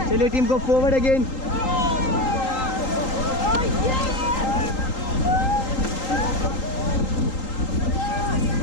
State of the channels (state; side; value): late; right; 3.8 ms